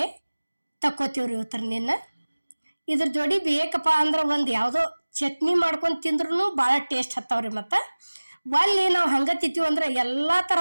ತಕ್ಕೋತೀವ್ರಿ ಇವತ್ತರನ್ನ. ಇದ್ರ ಜೋಡಿ ಬೇಕಪ್ಪ ಅಂದ್ರೆ ಒಂದು ಯಾವುದೋ ಚಟ್ನಿ ಮಾಡ್ಕೊಂಡು ತಿಂದ್ರೂ ಭಾಳ ಟೇಸ್ಟ್ ಹತ್ತವ್ರಿ. ಮತ್ತು ಒಲ್ಲಿ ನಾವು ಹಂಗೆ ತಿಂತೀವಿ ಅಂದ್ರೆ ಎಲ್ಲ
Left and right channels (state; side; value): inverted; both; correlation -1.00